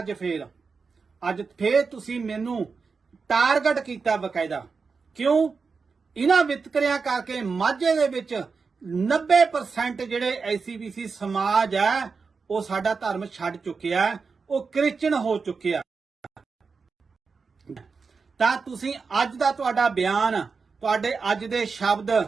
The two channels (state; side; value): quieter; left; 4.9 dB